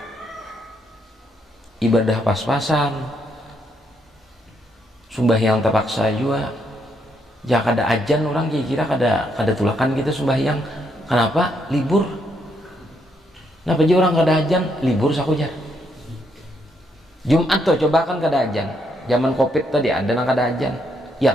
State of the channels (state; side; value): normal; both; correlation 0.75